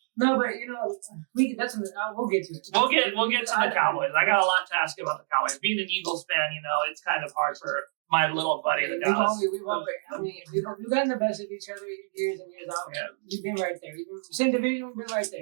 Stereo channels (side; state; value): left; silent; digital silence